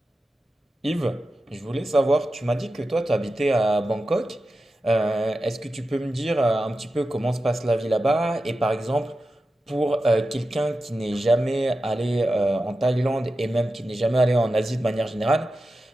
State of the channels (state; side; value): normal; both; correlation 0.92